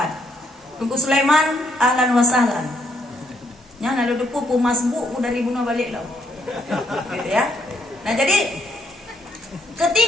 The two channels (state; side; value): normal; both; correlation 0.72